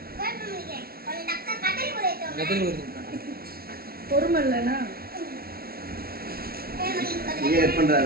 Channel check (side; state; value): left; late; 0.44 ms